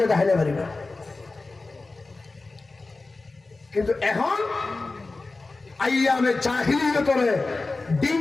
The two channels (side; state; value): right; quieter; 3.5 dB